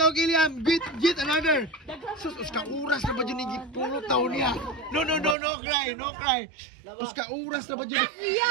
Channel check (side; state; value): left; drops out; at 5.4 s